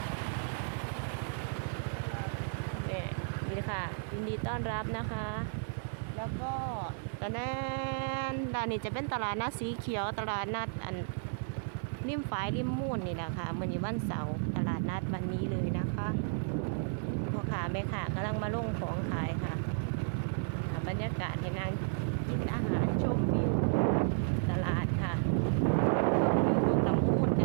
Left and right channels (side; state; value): left; silent; digital silence